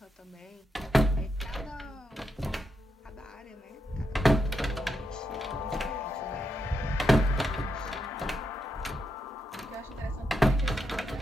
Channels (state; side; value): normal; both; correlation 0.83